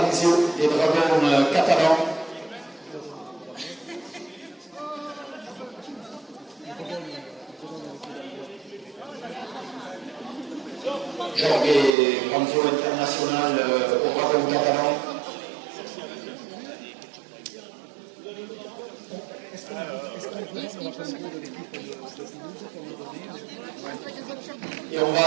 des Dragons catalans. Jorge Panzio international au Dragon catalan. Et on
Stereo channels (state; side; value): drops out; left; at 11.9 s